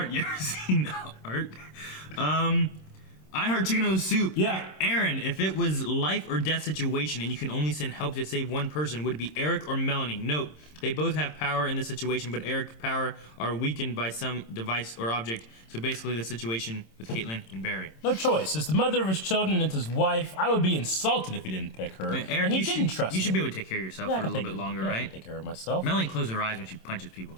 You ever seen art? I heard chicken noodle soup. Yeah. Aaron, if it was life or death situation and you can only send help to save one person, would it be Eric or Melanie? Note, they both have power in this situation, but Eric's power are weakened by some device or object. So basically the situation with Caitlin and Barry. No choice. As the mother of his children and his wife, I would be insulted if he didn't pick her. I mean, Eric, and he didn't trust me. You should be able to take care of yourself for a little bit longer, right? I can take care of myself. Melanie closes her eyes when she punches people.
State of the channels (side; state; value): right; late; 26 ms